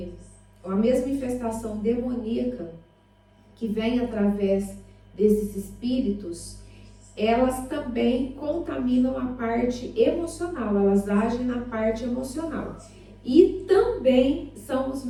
a mesma infestação demoníaca que vem através desses espíritos, elas também contaminam a parte emocional, elas agem na parte emocional. E também são os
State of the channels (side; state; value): both; identical; correlation 1.00